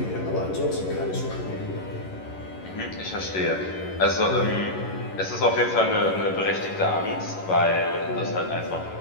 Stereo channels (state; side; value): late; right; 11 ms